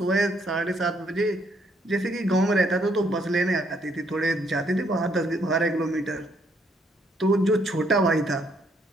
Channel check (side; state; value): both; normal; correlation 0.70